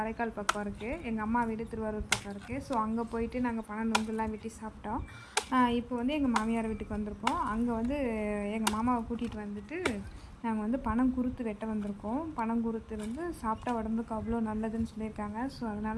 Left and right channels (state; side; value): identical; both; correlation 1.00